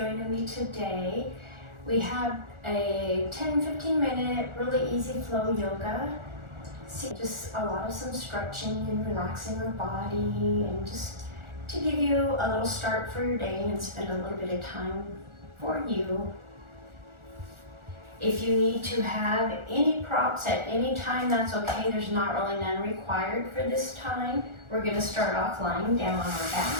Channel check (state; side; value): late; left; 1.4 ms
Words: me today. We have a 10-15 minute really easy flow yoga. Just a lot of some stretching and relaxing the body, and just to give you a little start for your day and spend a little bit of time for you. If you need to have any props at any time, that's okay. There's not really none required for this time. We're going to start off lying down on our back.